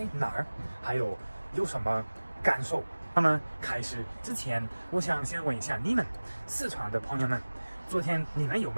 哪儿，还有什么感受。那么开始之前，我想先问一下你们四川的朋友们，昨天你们有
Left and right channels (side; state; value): both; inverted; correlation -1.00